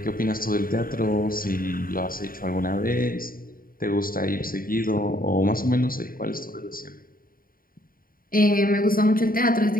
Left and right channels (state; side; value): late; right; 0.41 ms